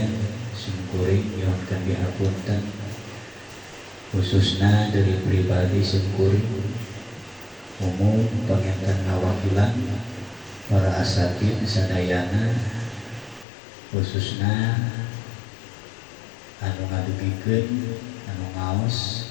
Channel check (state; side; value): drops out; right; at 13.5 s